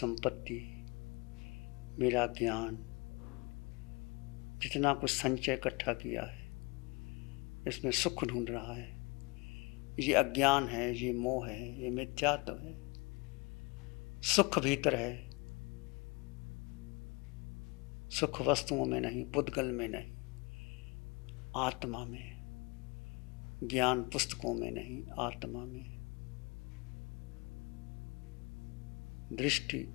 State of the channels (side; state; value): right; quieter; 27.9 dB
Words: मेरा ज्ञान, जितना कुछ संचय इकट्ठा किया है इसमें सुख ढूंढ रहा है। ये अज्ञान है, ये मोह है, ये मिथ्यात्व है। सुख भीतर है, सुख वस्तुओं में नहीं, पुद्गल में नहीं, आत्मा में। ज्ञान पुस्तकों में नहीं, आत्मा में। दृष्टि